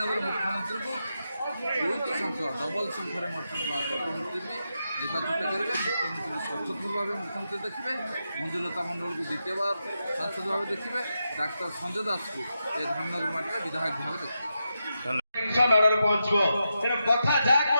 ମୁଖ୍ୟମନ୍ତ୍ରୀଙ୍କୁ 2ଟି ସଂଖ୍ୟା ଡବଲ୍ ସଂଖ୍ୟାରେ ମୁଖ୍ୟମନ୍ତ୍ରୀ ବି ନିର୍ବାଚିତ କରିବେ। ମୁଖ୍ୟମନ୍ତ୍ରୀ ସଚୋଟ ଭାବେ ମୁଖ୍ୟମନ୍ତ୍ରୀ ଦେଖିବେ, ମଞ୍ଜୁଲତା ମଣ୍ଡଳକୁ ଦ୍ୱିତୀୟବାର ସାଂସଦ ଭାବେ ଦେଖିବେ, ଡାକ୍ତର ସଞ୍ଜୟ ଦାସକୁ ଏ ଧାମନଗର ମାଟିରେ ବିଧାୟକ ଭାବେ ଦେଖିବେ। ମାଡ଼ରେ ପହଞ୍ଚିବ ତେଣୁ କଥା ଯାହା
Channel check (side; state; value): both; inverted; correlation -0.87